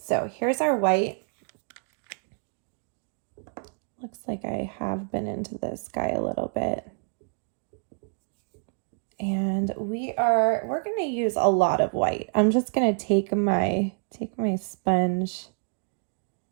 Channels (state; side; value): quieter; left; 39.7 dB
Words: here's our white. Looks like I have been into this guy a little bit. And we're going to use a lot of white. I'm just going to take my sponge,